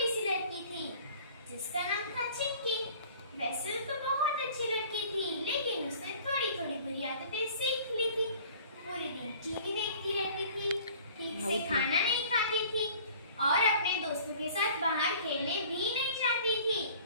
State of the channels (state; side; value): inverted; both; correlation -0.49